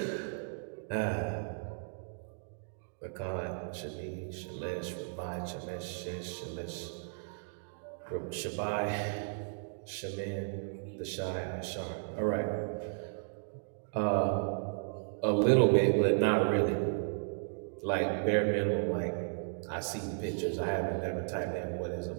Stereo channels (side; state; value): left; silent; digital silence